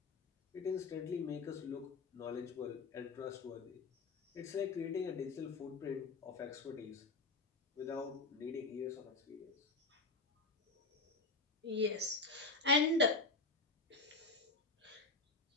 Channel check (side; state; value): right; quieter; 3.6 dB